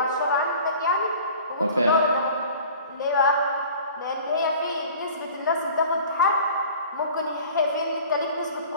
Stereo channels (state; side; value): inverted; both; correlation -0.44